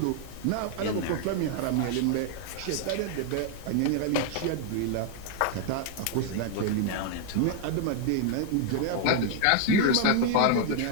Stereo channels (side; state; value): both; different; correlation 0.00